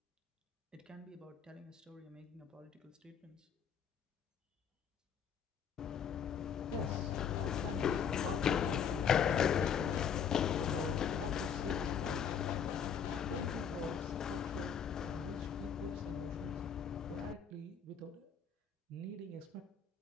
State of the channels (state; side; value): quieter; right; 7.4 dB